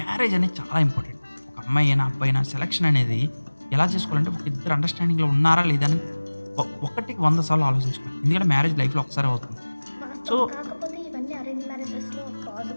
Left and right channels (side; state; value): both; inverted; correlation -1.00